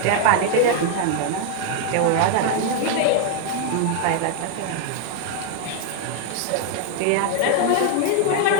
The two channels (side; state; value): both; different; correlation 0.00